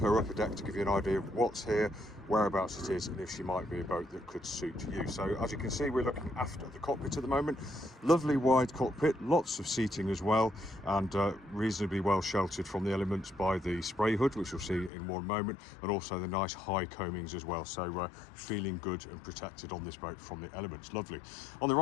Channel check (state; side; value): drops out; right; at 14.9 s